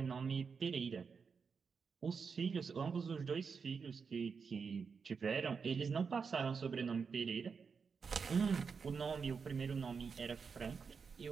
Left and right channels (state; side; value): quieter; left; 5.6 dB